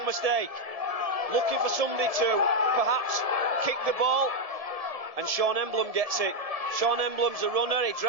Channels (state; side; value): late; left; 1.7 ms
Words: mistake, looking for somebody to perhaps kick the ball, and Sean Emblem gets it. Sean Emblem's a runner, he